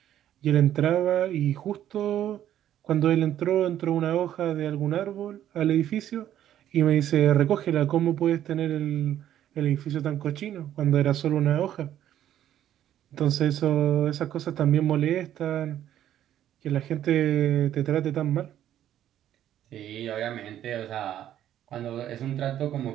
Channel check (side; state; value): left; quieter; 11.4 dB